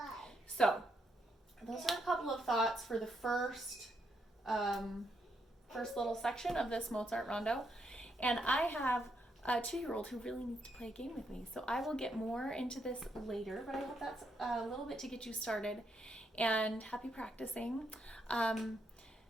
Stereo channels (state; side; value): normal; both; correlation 0.78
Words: So those are a couple of thoughts for the first little section of this Mozart Rondo. And I have a 2-year-old who really needs to play a game with me. So I will get more into this later, but I hope that's a little bit to get you started. And happy practicing.